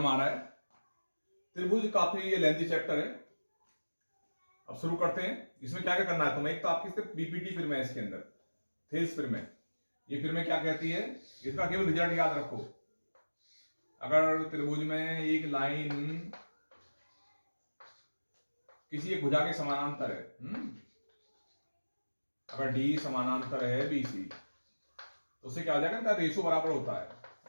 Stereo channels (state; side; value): inverted; both; correlation -1.00